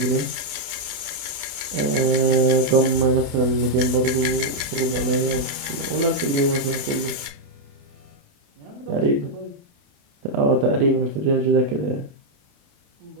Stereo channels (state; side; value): late; left; 28 ms